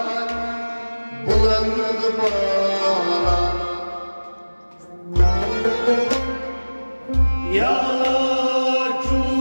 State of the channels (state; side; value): inverted; both; correlation -1.00